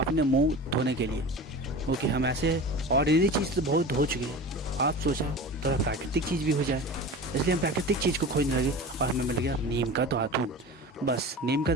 मुंह धोने के लिए, क्योंकि हम ऐसे ऑर्डिनरी चीज़ तो बहुत धो चुके हैं। आप सोचा थोड़ा प्राकृतिक चीज़ भी हो जाए, इसलिए हम प्राकृतिक चीज़ को खोजने लगे और हमें मिल गया नीम का दातुन। बस नीम का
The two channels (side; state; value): both; normal; correlation 0.33